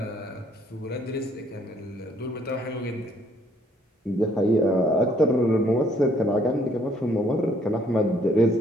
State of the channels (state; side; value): normal; both; correlation 0.65